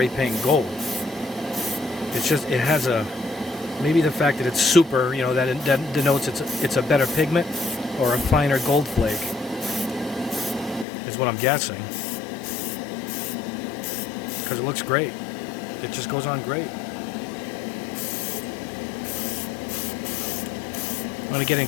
paint gold. It's just, it has a, maybe the fact that it's super, you know, that denotes it's a better pigment or a finer gold flake is what I'm guessing. Because it looks great. It just goes on great. I'm going to get in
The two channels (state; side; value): drops out; right; at 10.9 s